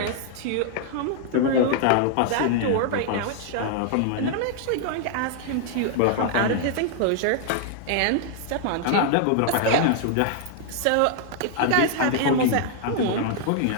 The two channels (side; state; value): both; different; correlation 0.00